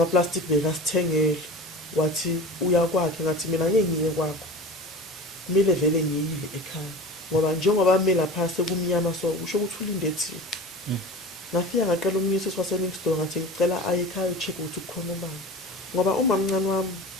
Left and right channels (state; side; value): normal; both; correlation 0.34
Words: plastic bekasithengele. Wathi uya kwakhe ngathi mina ngeke ngiye kwakho. Kumele vele ngiyile ekhaya. Ngoba njengoba mina phase kumnyama so usho ukuthi ulinde thina. Ngafika ngaqala umnyisi waseNixton ngathi ngicela aye ekhaya ucheck ukuthi kukhona ubani. Ngoba umamncane